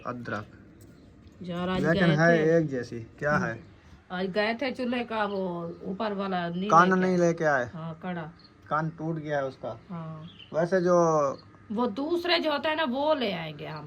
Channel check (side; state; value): both; identical; correlation 1.00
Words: अदरक, जरा लेकिन है एक जैसी। क्या है? आज गए थे चूल्हे का वो ऊपर वाला कान नहीं लेके आए? हाँ कड़ा कान टूट गया है उसका। हाँ। वैसे जो वो दूसरे जो होते हैं ना वो ले आएंगे